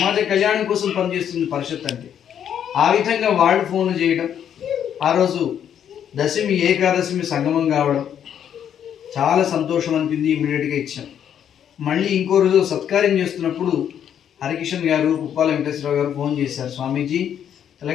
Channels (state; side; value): quieter; right; 9.2 dB